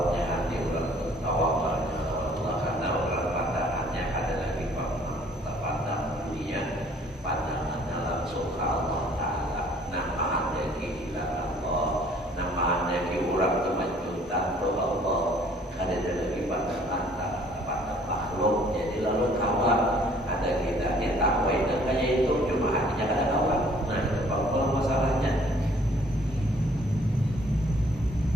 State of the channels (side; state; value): both; normal; correlation 0.58